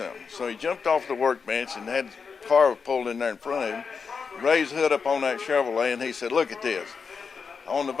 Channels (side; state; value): right; quieter; 5.5 dB